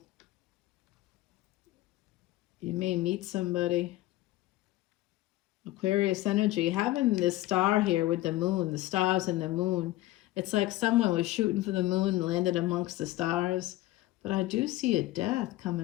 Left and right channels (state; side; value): quieter; right; 17.0 dB